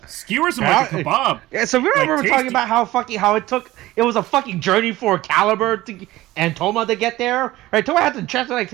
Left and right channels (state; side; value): quieter; left; 17.2 dB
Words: skewers him like a kebab. Yeah, so remember we were talking about how it was a fucking journey for Caliber and Toma to get there. Right, Toma had to transfer like